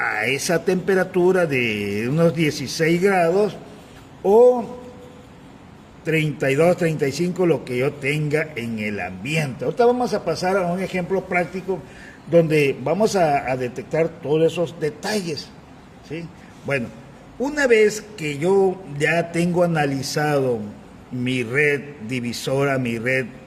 esa temperatura de unos 16 grados o 32, 35, lo que yo tenga en el ambiente. Ahorita vamos a pasar a un ejemplo práctico donde vamos a detectar todos esos detalles, ¿sí? Bueno, una vez que yo ya tengo analizado mi red divisora, mi red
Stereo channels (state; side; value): identical; both; correlation 1.00